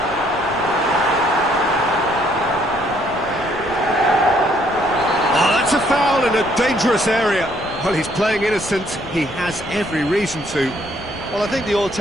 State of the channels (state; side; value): noise; left; rumble, 17 dB below the sound